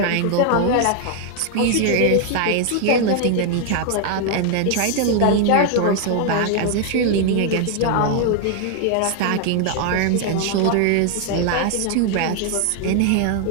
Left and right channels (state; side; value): different; both; correlation 0.00